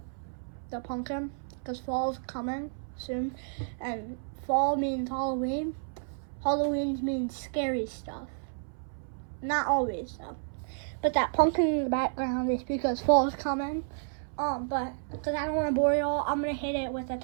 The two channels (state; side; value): silent; left; 57 dB below the other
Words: the pumpkin because fall's coming soon, and fall means Halloween. Halloween means scary stuff. Not always though. But that pumpkin in the background is because fall's coming. But because I don't want to bore y'all, I'm gonna hit it with a